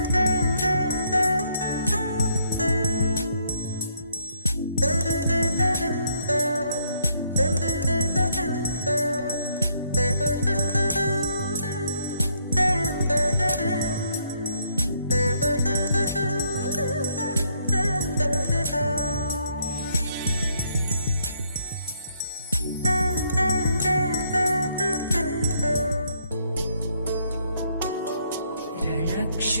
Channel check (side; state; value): both; inverted; correlation -0.71